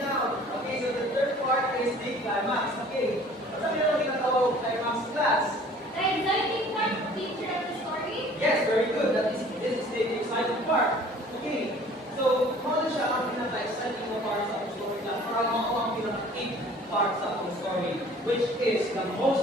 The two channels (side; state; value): both; normal; correlation 0.50